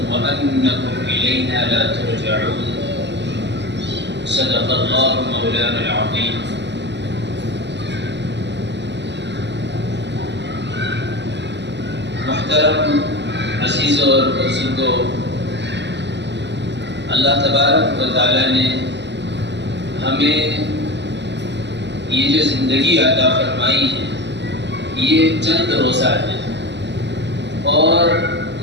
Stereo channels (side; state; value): left; late; 0.51 ms